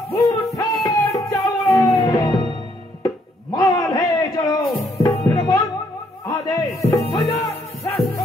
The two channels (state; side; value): normal; both; correlation 0.70